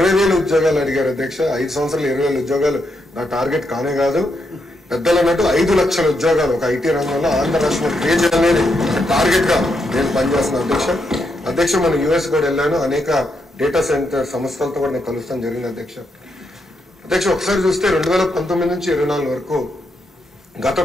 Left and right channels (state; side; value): normal; both; correlation 0.81